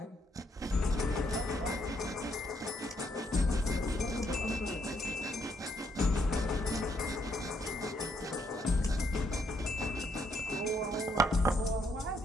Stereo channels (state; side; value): normal; both; correlation 0.73